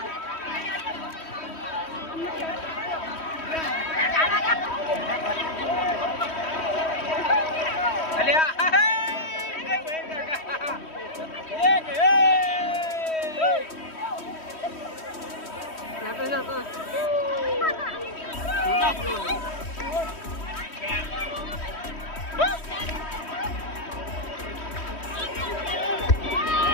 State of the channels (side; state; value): right; late; 3.1 ms